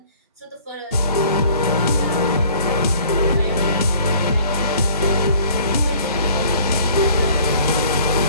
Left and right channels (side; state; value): both; inverted; correlation -0.54